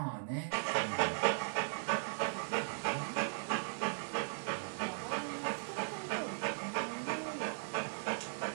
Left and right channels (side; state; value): left; silent; digital silence